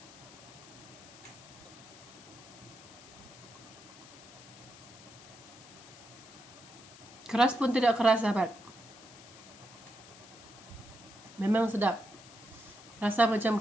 Keras pun tidak keras sahabat. Memang sedap. Rasa macam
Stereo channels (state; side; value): noise; left; hiss, 19 dB below the sound